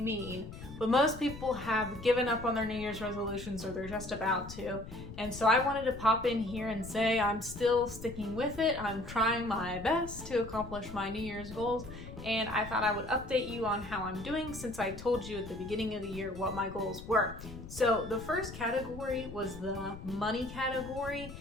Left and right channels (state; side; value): noise; left; rumble, 12 dB below the sound